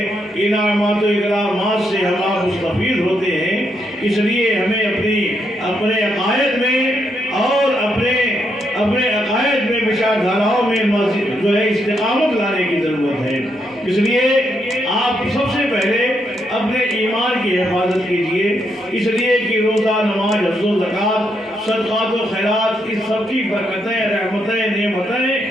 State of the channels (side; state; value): both; normal; correlation 0.78